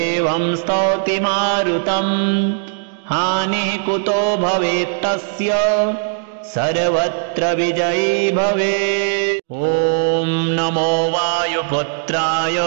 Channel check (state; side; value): silent; left; digital silence